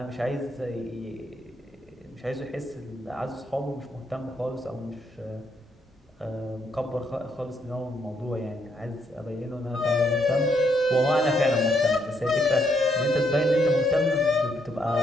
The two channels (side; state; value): both; normal; correlation 0.75